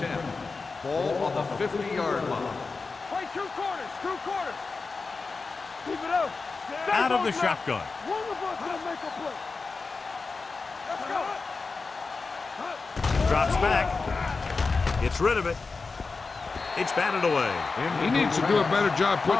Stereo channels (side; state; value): right; quieter; 4.2 dB